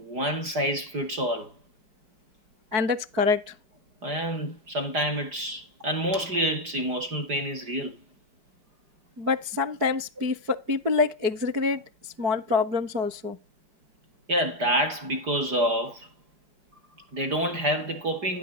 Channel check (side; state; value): left; late; 5.0 ms